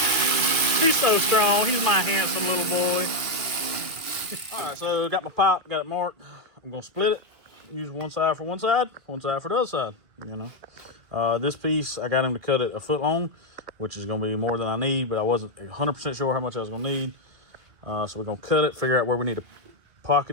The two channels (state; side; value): late; left; 2.1 ms